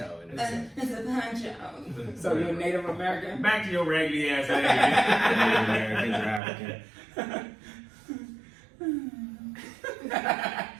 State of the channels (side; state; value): left; drops out; at 6.4 s